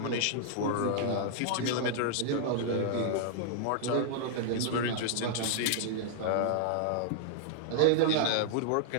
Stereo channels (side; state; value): both; different; correlation -0.01